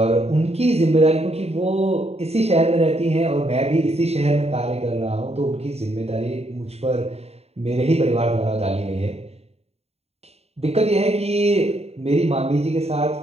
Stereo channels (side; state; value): left; late; 0.30 ms